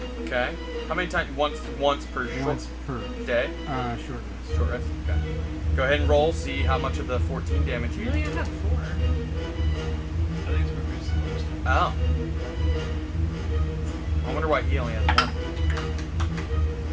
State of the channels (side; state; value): both; identical; correlation 1.00